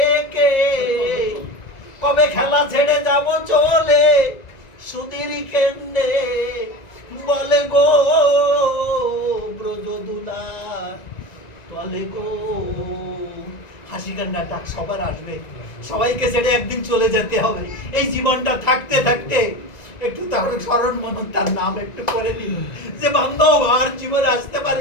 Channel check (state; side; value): late; right; 1.9 ms